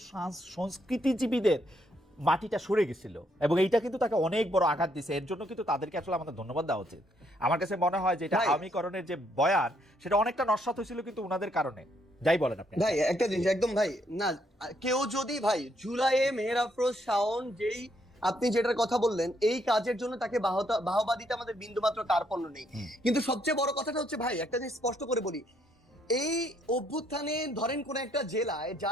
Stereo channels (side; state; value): both; normal; correlation 0.72